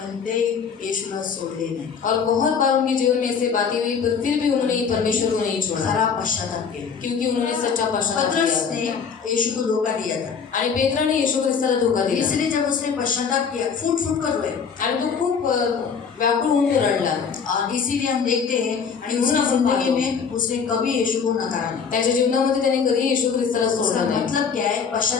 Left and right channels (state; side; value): quieter; right; 6.3 dB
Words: ते येशूला सोडले नाही, और बहुत बार उनके जीवन में ऐसे बातें हुई पर फिर भी उन्होंने ये परमेश्वर को नहीं छोड़ा, खरा पश्चाताप केला। क्योंकि उन्होंने सच्चा पश्चाताप पतरस किया। ने यीशु को धोखा दिया था, आणि पेत्राने येशू ख्रिस्ताला धोका दिला इसलिए जब उसने पश्चाताप किया फूट फूट कर रोए, आणि तो खूप व्याकुळ होऊन तो रडला। और इसीलिए हम देखते हैं कि उसकी म्हणून आपण जिंदगी पाहतो, में उसने कभी यीशु को नकारा नहीं। त्याच्या जीवनामध्ये त्याने कधी येशू ख्रिस्ताला उसका सोडलं नाही। मतलब क्या है?